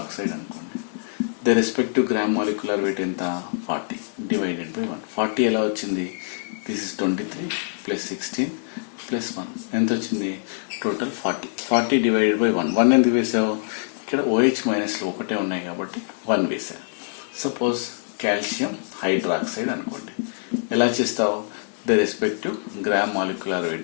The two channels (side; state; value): right; silent; digital silence